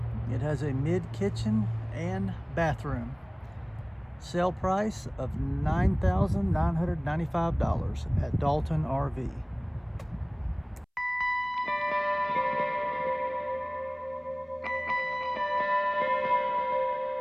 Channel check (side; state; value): both; identical; correlation 1.00